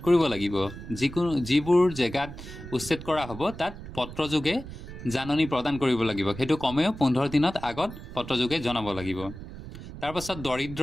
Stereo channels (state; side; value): noise; right; rumble, 12 dB below the sound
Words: কৰিব লাগিব। যিবোৰ জেগাত উচ্ছেদ কৰা হ'ব তাত পত্ৰযোগে জাননী প্ৰদান কৰিব লাগিব, সেইটো কমেও 15 দিনত আগত পত্ৰযোগে জনাব লাগিব। তাৰপাছত দৰিদ্ৰ,